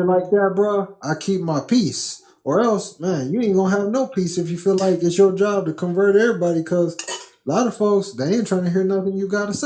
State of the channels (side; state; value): both; identical; correlation 1.00